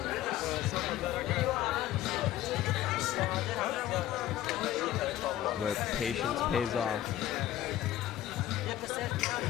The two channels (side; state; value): right; quieter; 12.9 dB